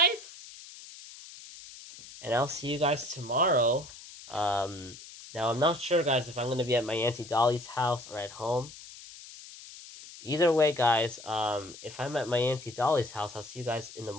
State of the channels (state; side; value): noise; left; hiss, 16 dB below the sound